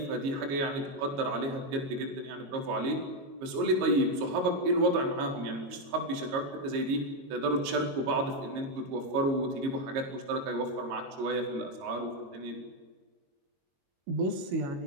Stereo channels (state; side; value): late; left; 22 ms